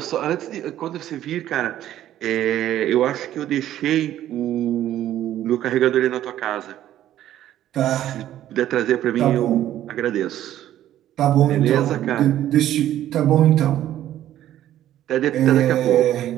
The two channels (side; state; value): left; quieter; 12.4 dB